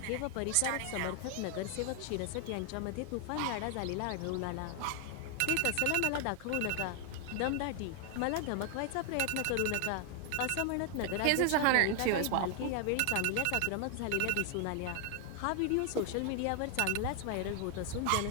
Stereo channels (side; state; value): both; different; correlation 0.00